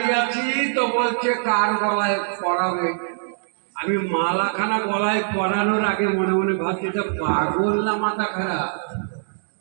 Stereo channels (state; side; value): silent; left; digital silence